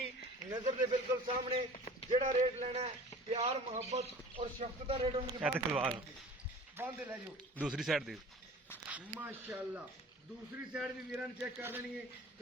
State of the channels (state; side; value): normal; both; correlation 0.43